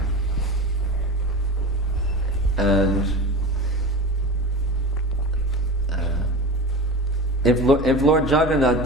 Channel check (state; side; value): normal; both; correlation 0.30